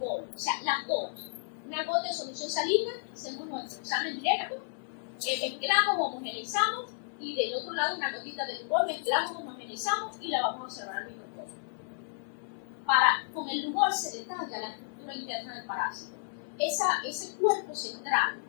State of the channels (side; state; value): right; silent; 56 dB below the other